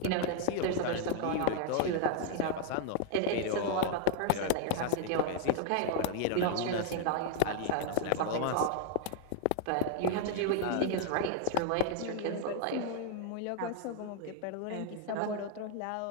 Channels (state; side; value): different; both; correlation 0.00